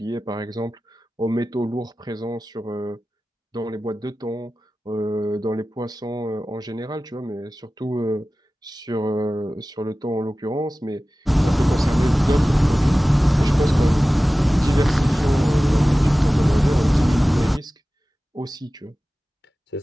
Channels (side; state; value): both; normal; correlation 0.96